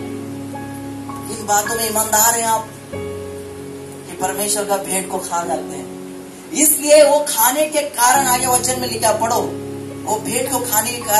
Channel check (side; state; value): both; identical; correlation 1.00